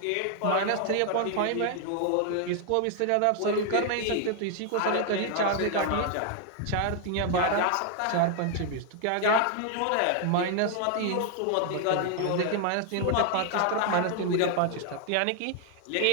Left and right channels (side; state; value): both; different; correlation 0.00